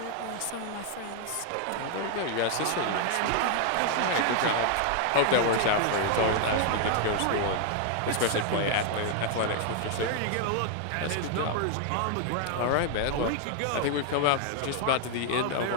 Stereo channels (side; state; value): both; different; correlation 0.00